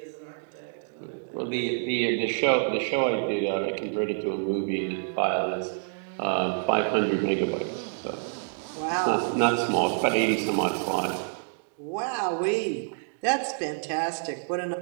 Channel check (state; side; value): silent; left; digital silence